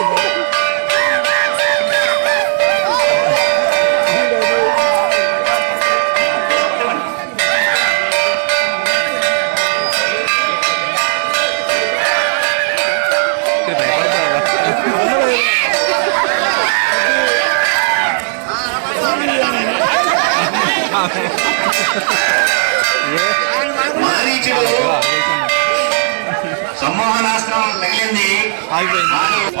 మారీచుడు సమ్మోహనాస్త్రం తగిలింది,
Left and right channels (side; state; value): left; silent; digital silence